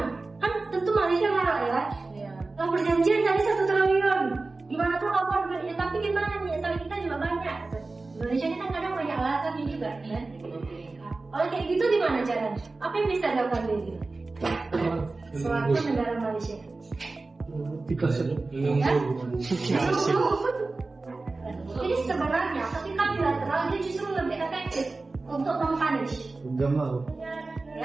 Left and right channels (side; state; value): left; quieter; 3.5 dB